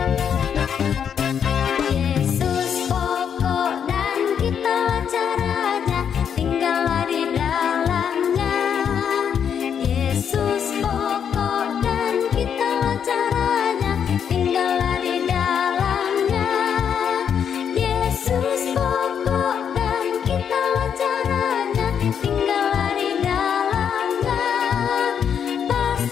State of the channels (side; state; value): right; quieter; 7.9 dB